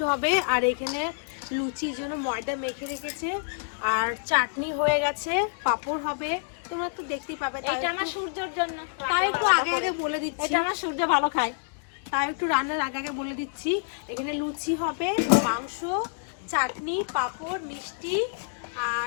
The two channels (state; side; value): silent; right; digital silence